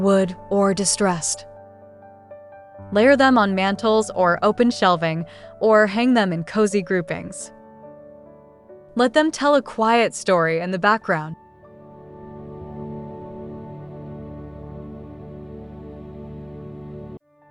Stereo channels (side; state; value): both; identical; correlation 1.00